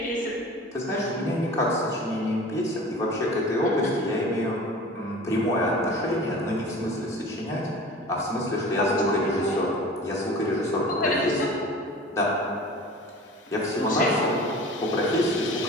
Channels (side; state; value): both; normal; correlation 0.40